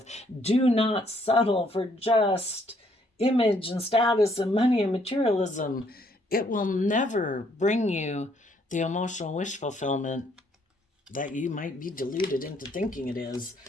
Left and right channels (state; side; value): normal; both; correlation 0.68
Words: Do not settle for just image and status and money and materialism. It will never bring you the emotional wish fulfillment that you might be deluded into thinking it is.